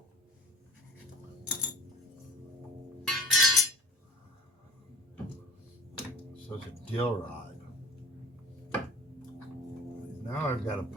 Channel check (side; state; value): both; normal; correlation 0.40